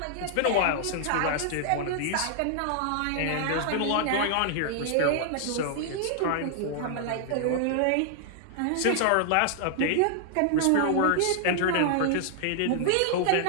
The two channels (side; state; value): both; different; correlation -0.01